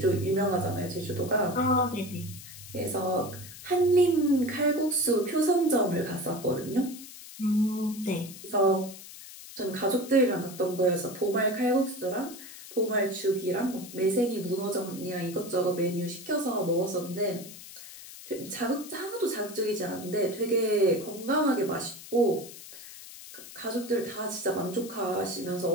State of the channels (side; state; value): left; noise; hiss, 15 dB below the sound